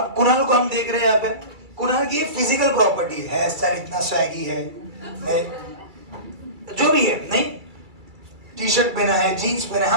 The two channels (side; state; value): left; late; 2.3 ms